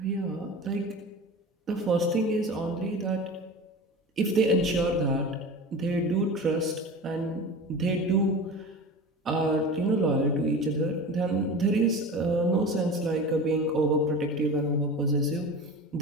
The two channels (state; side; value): normal; both; correlation 0.32